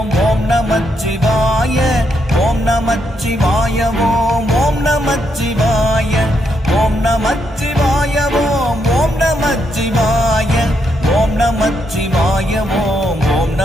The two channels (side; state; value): both; normal; correlation 0.78